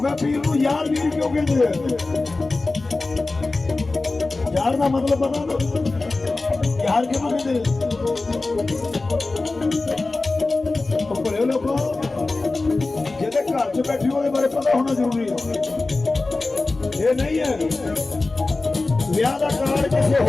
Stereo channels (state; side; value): quieter; right; 3.4 dB